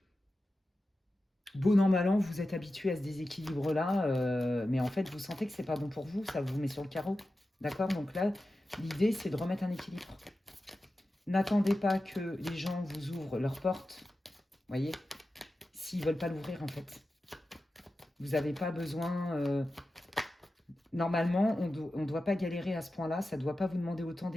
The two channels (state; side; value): normal; both; correlation 0.93